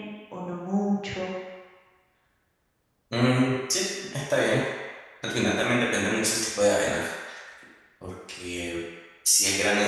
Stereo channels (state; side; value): identical; both; correlation 1.00